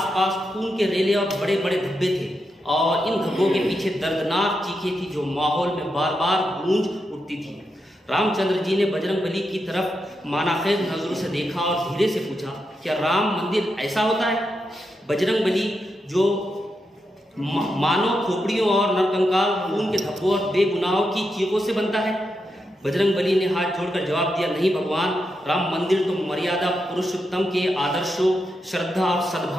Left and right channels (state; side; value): normal; both; correlation 0.85